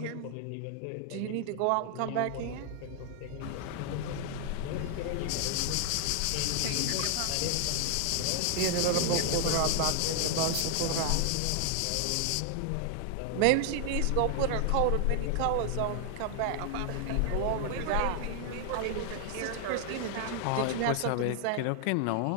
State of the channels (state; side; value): different; both; correlation 0.00